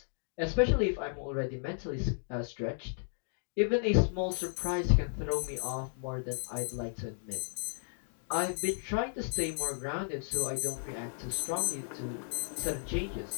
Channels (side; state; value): right; silent; digital silence